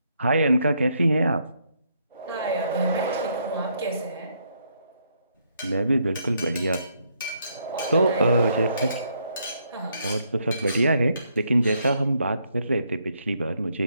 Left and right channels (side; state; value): both; inverted; correlation -0.74